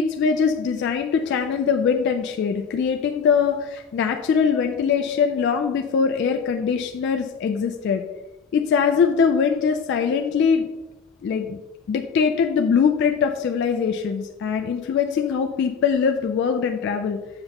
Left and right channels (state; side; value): quieter; right; 6.0 dB